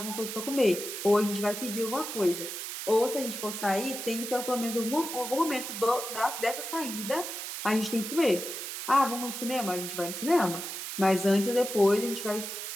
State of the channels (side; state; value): right; noise; hiss, 6 dB below the sound